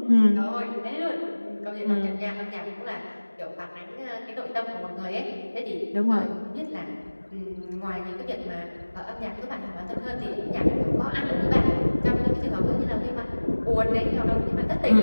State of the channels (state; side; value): inverted; both; correlation -1.00